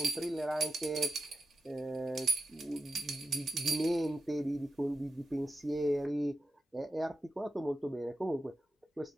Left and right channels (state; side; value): normal; both; correlation 0.90